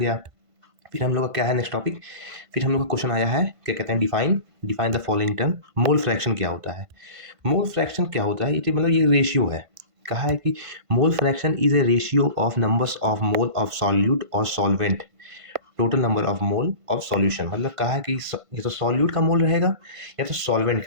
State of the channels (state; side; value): late; left; 1.5 ms